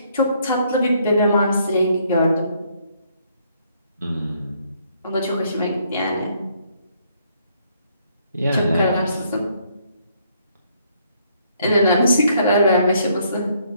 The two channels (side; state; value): both; inverted; correlation -0.68